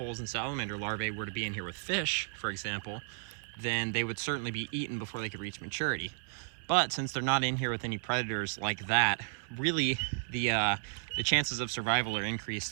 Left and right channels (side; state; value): left; silent; digital silence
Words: and salamander larvae were to be in here with fish, for example, then they would certainly be eaten before they could reach maturity. But since they're not in here with any predators like that, really the chances of survival are